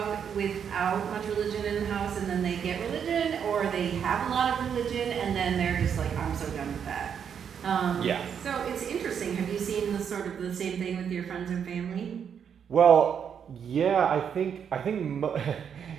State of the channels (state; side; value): quieter; left; 7.7 dB